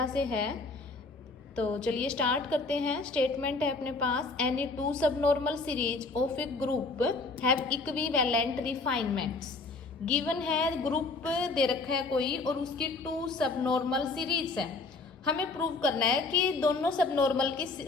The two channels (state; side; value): quieter; right; 3.6 dB